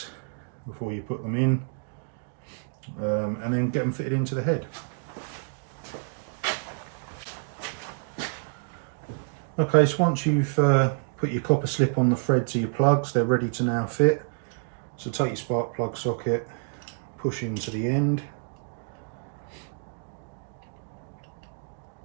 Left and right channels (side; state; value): left; silent; 59 dB below the other